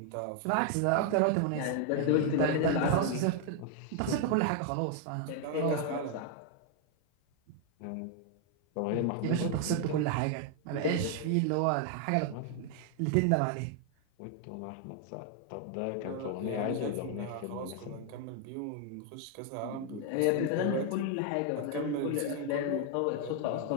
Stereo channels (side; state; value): both; different; correlation 0.00